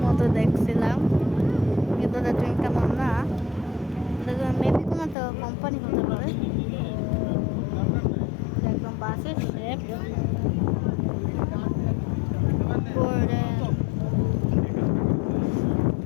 মতো দেখছিলাম, কিন্তু তুমি কেমন না, মেবি কোনো একটা কোম্পানি হতে পারে। একদম বাসের শেপ করে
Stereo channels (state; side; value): drops out; right; at 5.2 s